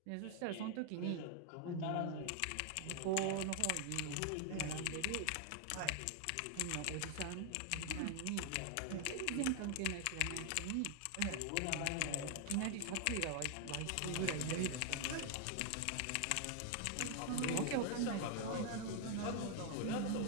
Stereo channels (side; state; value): both; different; correlation 0.00